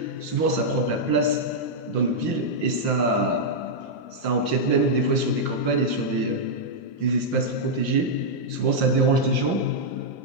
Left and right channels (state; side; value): late; right; 5.7 ms